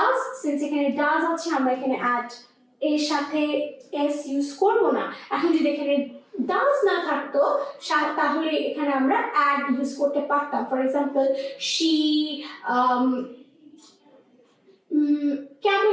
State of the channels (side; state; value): both; identical; correlation 1.00